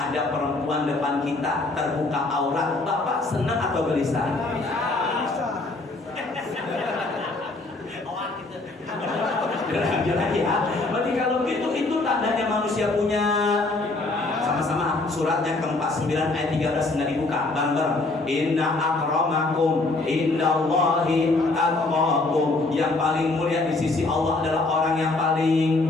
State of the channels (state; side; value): quieter; right; 3.2 dB